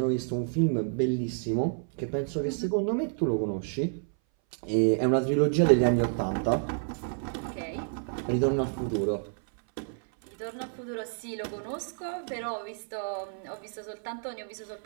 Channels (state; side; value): silent; left; 58 dB below the other